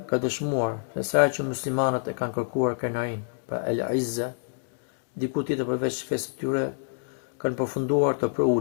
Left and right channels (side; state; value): right; silent; digital silence